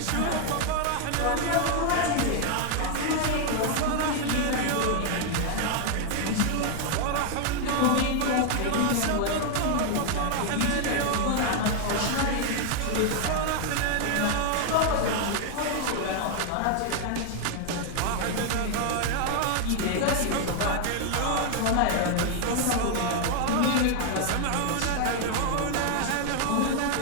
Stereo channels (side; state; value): both; different; correlation 0.00